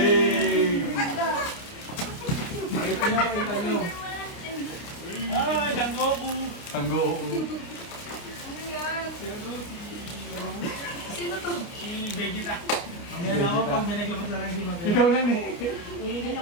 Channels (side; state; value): right; late; 29 ms